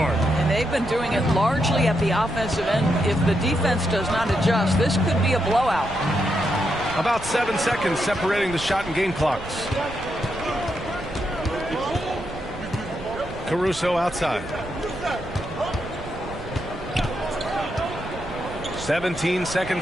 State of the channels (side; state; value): right; noise; rumble, 13 dB below the sound